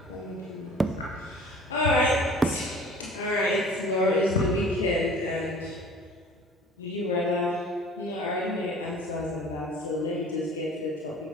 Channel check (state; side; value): normal; both; correlation 0.46